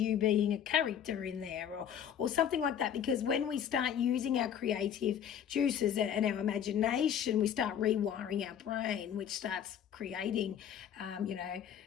being a character in there or something like that. Because when we start using our creative juices and our imagination, we start rewiring our brain, which starts creating,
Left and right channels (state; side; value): quieter; right; 9.0 dB